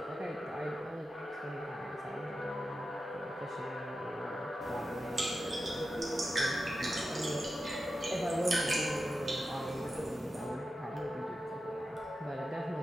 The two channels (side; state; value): both; normal; correlation 0.91